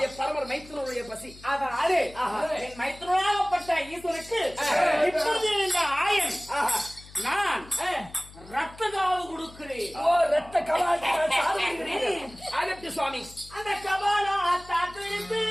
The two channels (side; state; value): left; noise; hum, 20 dB below the sound